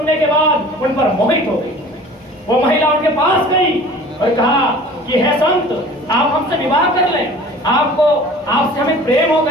के बाद उन पर मोहित हो गई। वो महिला उनके पास गई और कहा कि हे संत, आप हमसे विवाह कर लें, आपसे हमें प्रेम हो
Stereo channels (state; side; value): normal; both; correlation 0.45